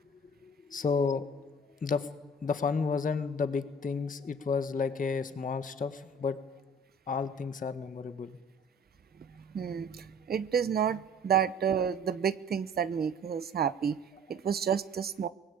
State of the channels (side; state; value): both; normal; correlation 0.49